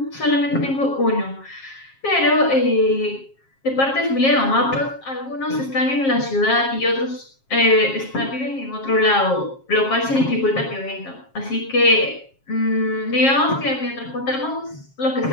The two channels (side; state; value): right; late; 7.4 ms